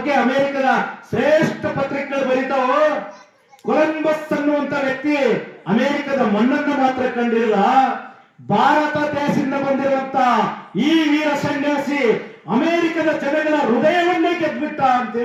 ಅಮೆರಿಕದ ಶ್ರೇಷ್ಠ ಪತ್ರಿಕೆಗಳು ಬರೀತಾವು. ಕೊಲಂಬಸ್ ಅನ್ನುವಂತ ವ್ಯಕ್ತಿ ಅಮೆರಿಕದ ಮಣ್ಣನ್ನು ಮಾತ್ರ ಕಂಡಿಲ್ಲ, ಭಾರತ ದೇಶದಿಂದ ಬಂದಿರುವಂತ ಈ ವೀರ ಸನ್ಯಾಸಿ ಅಮೆರಿಕದ ಜನಗಳ ಹೃದಯವನ್ನೇ ಗೆದ್ಬಿಟ್ಟ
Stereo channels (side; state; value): both; identical; correlation 1.00